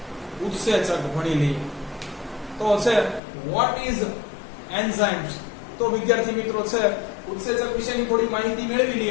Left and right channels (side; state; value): right; drops out; at 3.2 s